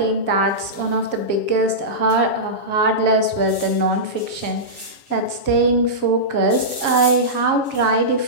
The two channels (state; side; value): late; right; 7.3 ms